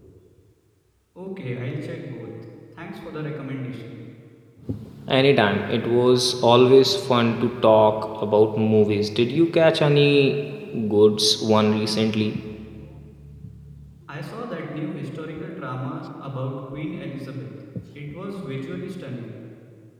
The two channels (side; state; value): both; identical; correlation 1.00